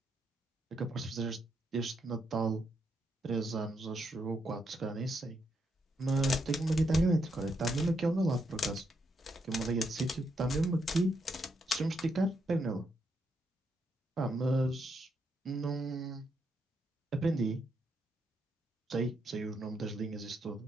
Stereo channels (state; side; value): normal; both; correlation 0.79